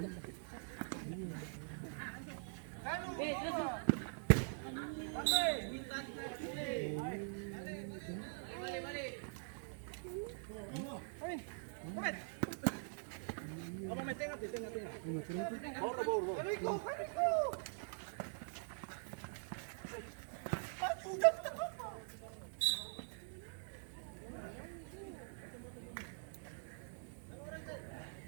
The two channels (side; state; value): left; silent; digital silence